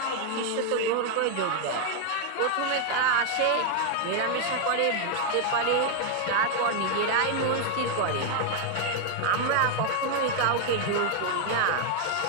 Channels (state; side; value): different; both; correlation 0.01